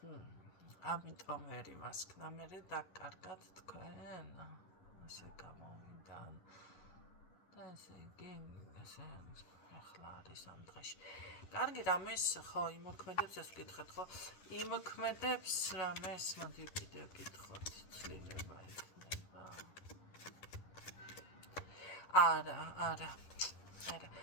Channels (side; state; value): right; late; 11 ms